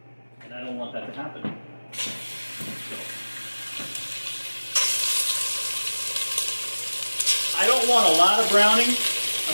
And I don't want that to happen. So, I don't want a lot of browning.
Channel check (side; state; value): both; inverted; correlation -1.00